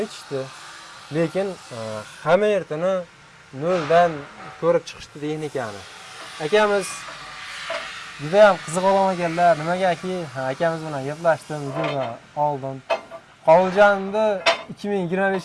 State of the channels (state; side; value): identical; both; correlation 1.00